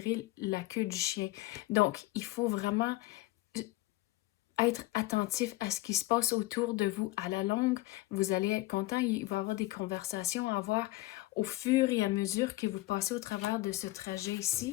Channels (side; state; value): right; quieter; 18.9 dB